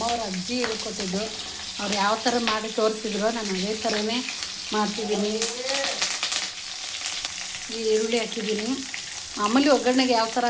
ಅಜ್ಜಿ ಹೇಳ್ಕೊಟ್ಟಿದ್ದು. ಅವ್ರು ಯಾವ ಥರ ಮಾಡಿ ತೋರಿಸಿದ್ರು ನಾನು ಅದೇ ಥರನೇ ಮಾಡ್ತಿದ್ದೀನಿ. ಈ ಈರುಳ್ಳಿ ಹಾಕಿದ್ದೀನಿ. ಮಾಮೂಲಿ ಒಗ್ಗರಣೆಗೆ ಯಾವ ಥರ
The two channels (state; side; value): identical; both; correlation 1.00